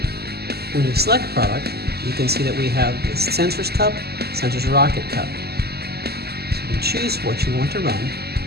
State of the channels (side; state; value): left; late; 0.46 ms